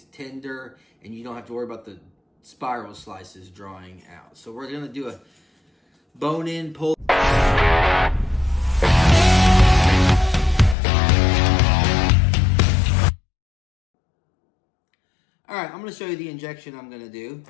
tender, and you don't have to worry about the spiral slices drawing out. So we're going to do a bone-in pulled. Alright, I'm going to show you the injection I'm going to do.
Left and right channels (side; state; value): right; drops out; at 10.8 s